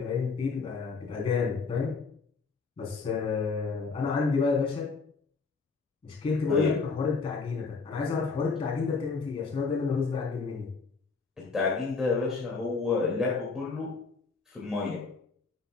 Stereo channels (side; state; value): right; quieter; 4.5 dB